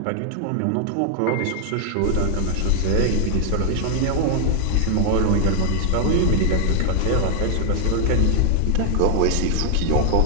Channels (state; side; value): different; both; correlation 0.00